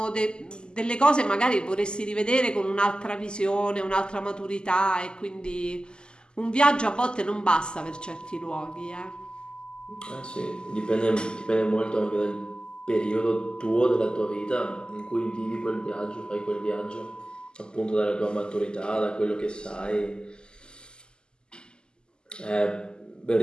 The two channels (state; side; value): late; right; 0.047 ms